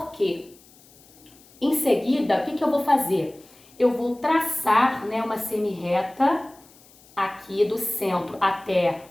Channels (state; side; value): noise; left; hiss, 27 dB below the sound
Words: quê? Em seguida, o que eu vou fazer? Eu vou traçar, né, uma semirreta aqui do centro até